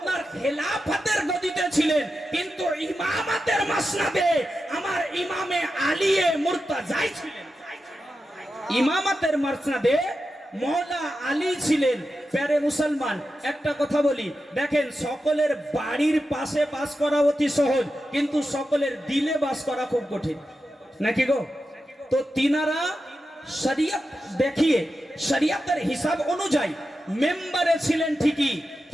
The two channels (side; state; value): both; normal; correlation 0.90